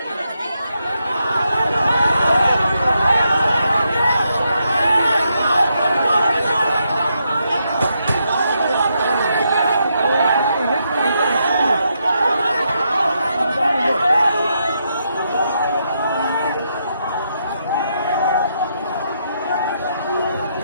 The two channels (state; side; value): inverted; both; correlation -0.80